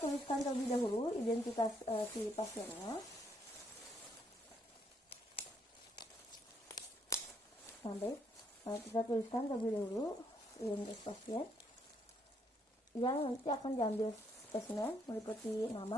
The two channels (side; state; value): both; normal; correlation 0.72